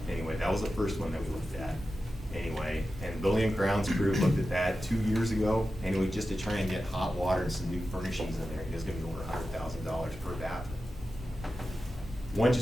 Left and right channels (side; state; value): both; normal; correlation 0.92